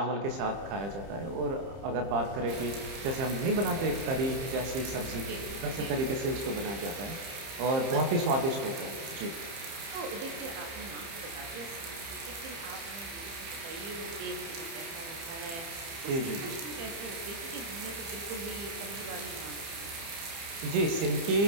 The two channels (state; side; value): late; left; 30 ms